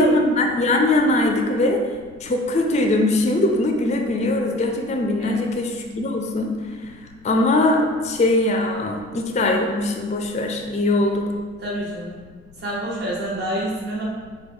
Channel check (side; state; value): left; noise; rumble, 26 dB below the sound